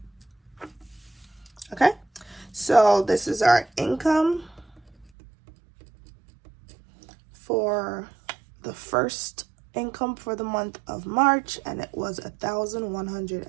Okay, so this is our income for the first income for the month of March, and it was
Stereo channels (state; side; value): drops out; left; at 5.1 s